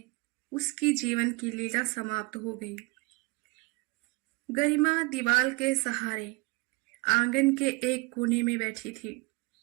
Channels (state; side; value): quieter; left; 26.0 dB